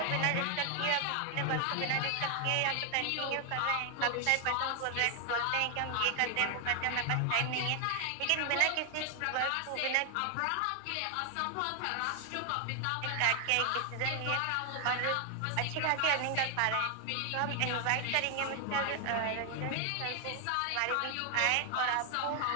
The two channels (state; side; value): different; both; correlation 0.00